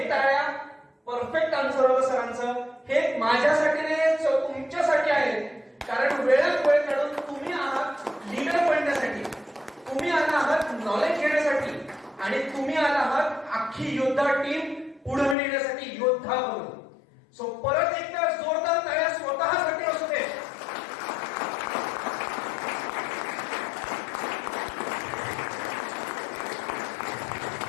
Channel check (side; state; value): right; drops out; at 15.4 s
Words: टाळ्या परफेक्ट आन्सर होतं सरांचं. हे माझ्यासाठी नाही, तुमच्यासाठी आहे. कारण वेळात वेळ काढून तुम्ही आहात लीडर बनण्यासाठी, तुम्ही आला आहात नॉलेज घेण्यासाठी, आणि तुम्ही आला आहात अख्खी योद्धा टीम पुढे नेण्यासाठी योद्धा बनून. सो परत एकदा जोरदार टाळ्या स्वतःसाठी असू दे.